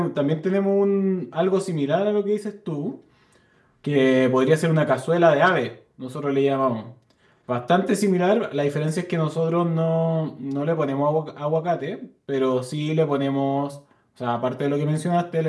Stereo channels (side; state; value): both; identical; correlation 1.00